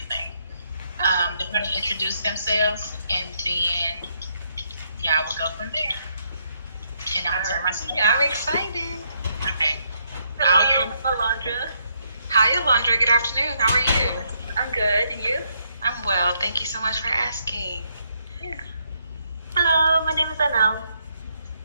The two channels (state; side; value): inverted; both; correlation -0.75